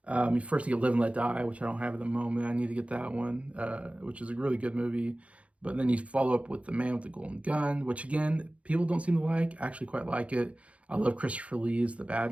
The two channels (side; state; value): left; late; 0.063 ms